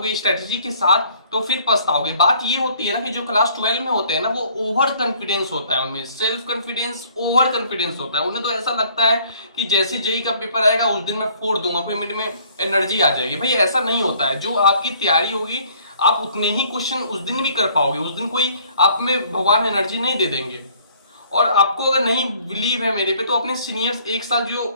स्ट्रेटेजी के साथ तो फिर पछताओगे। बात ये होती है ना कि जो क्लास 12 में होते हैं ना, वो ओवर कॉन्फिडेंस होता है, उनमें सेल्फ कॉन्फिडेंस ओवर कॉन्फिडेंस होता है। उन्हें तो ऐसा लगता है कि जैसे जेईई का पेपर आएगा उस दिन मैं फोड़ दूंगा, कोई मेरे में एनर्जी आ जाएगी। भाई ऐसा नहीं होता है। जो आपकी तैयारी होगी आप उतने ही क्वेश्चन उस दिन भी कर पाओगे। उस दिन कोई आप में भगवान एनर्जी नहीं दे देंगे। और आपको अगर नहीं बिलीव है मेरे पे तो अपने सीनियर्स एक साल जो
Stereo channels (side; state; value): both; inverted; correlation -0.58